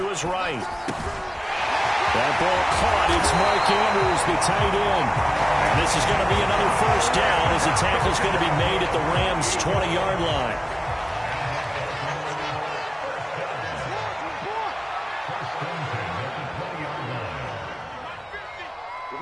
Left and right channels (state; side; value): identical; both; correlation 1.00